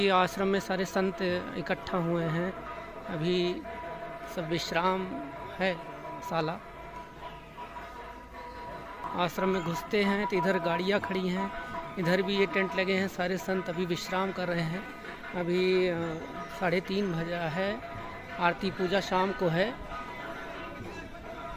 आश्रम में सारे संत इकट्ठा हुए हैं, अभी सब विश्राम है शाला। आश्रम में घुसते हैं तो इधर गाड़ियाँ खड़ी हैं, इधर भी ये टेंट लगे हैं, सारे संत अभी विश्राम कर रहे हैं। अभी 3:30 बजा है, आरती पूजा शाम को है।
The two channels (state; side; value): identical; both; correlation 1.00